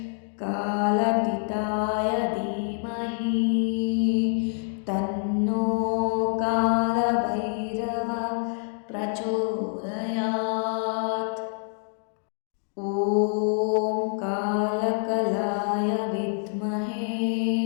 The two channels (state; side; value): silent; right; 61 dB below the other